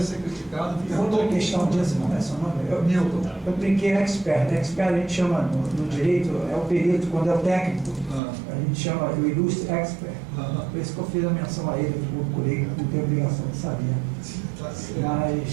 ser criticado. Outra questão disso, não é seu nome? Milton. Eu brinquei expert. Expert a gente chama no direito, é o perito, quando é o técnico, a gente chama o ilustre expert. Por isso que eu fiz a menção a ele, que eu procurei, não tenho obrigação de saber.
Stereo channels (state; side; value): drops out; left; at 8.2 s